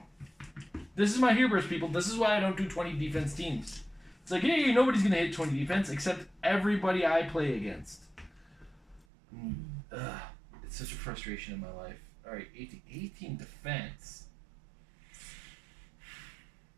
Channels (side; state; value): left; drops out; at 9.1 s